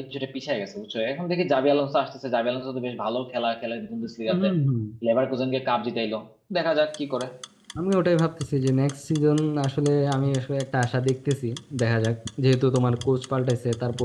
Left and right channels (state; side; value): identical; both; correlation 1.00